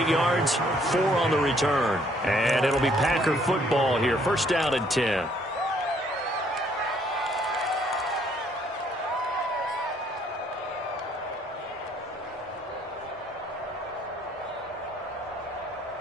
yards, 4 on the return. And it'll be Packer football here. 1st down and 10.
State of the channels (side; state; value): both; normal; correlation 0.65